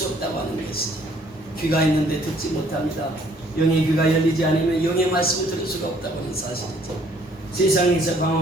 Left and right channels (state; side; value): normal; both; correlation 0.62